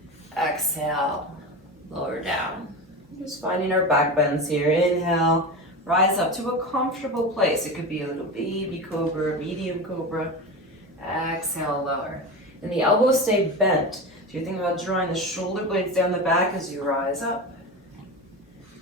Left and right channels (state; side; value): normal; both; correlation 0.24